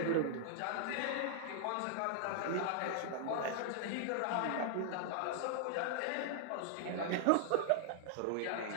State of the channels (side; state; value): both; different; correlation -0.01